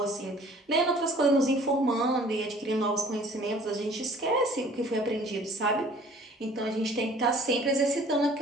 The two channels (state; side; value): normal; both; correlation 0.52